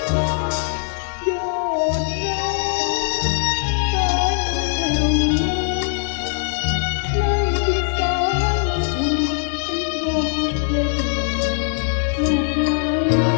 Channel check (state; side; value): silent; right; 65 dB below the other